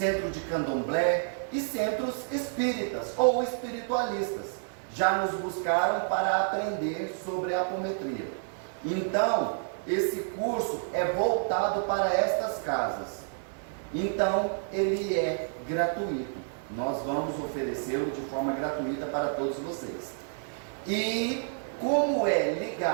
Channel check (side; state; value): left; silent; digital silence